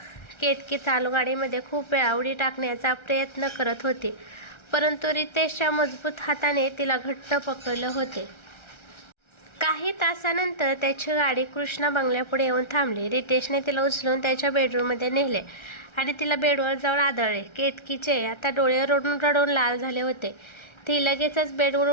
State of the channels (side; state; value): right; late; 1.3 ms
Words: केतकी चालू गाडीमध्ये खूप वेळा उडी टाकण्याचा प्रयत्न करत होती, परंतु रितेशच्या मजबूत हाताने तिला घट्ट पकडले होते. काही तासानंतर त्याची गाडी कृष्णा बंगल्यापुढे येऊन थांबली. रितेशने तिला उचलून त्याच्या बेडरूममध्ये नेले आणि तिला बेडवर जाऊन आदळले. केतकीचे आता डोळे रडून रडून लाल झाले होते. ती लगेचच बेडवर